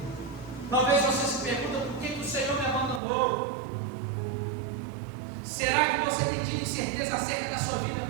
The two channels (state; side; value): drops out; left; at 3.0 s